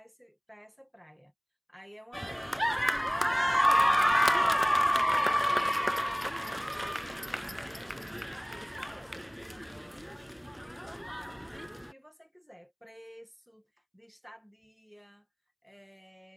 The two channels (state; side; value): identical; both; correlation 1.00